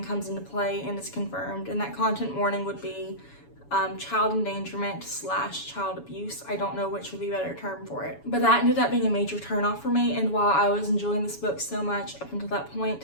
comes into play and is confirmed. And that content warning would be child endangerment / child abuse. I don't know which would be a better term for it. But that ended up being a major turnoff for me, and while I was enjoying this book so much up until that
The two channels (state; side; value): late; right; 7.1 ms